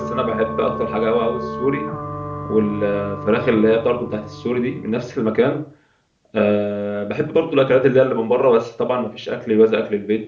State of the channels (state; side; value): identical; both; correlation 1.00